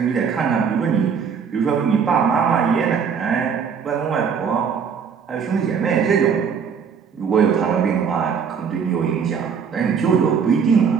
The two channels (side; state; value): left; quieter; 6.6 dB